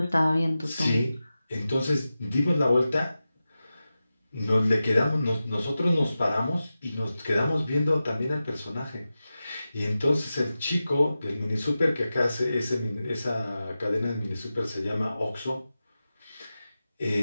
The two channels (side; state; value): both; inverted; correlation -0.94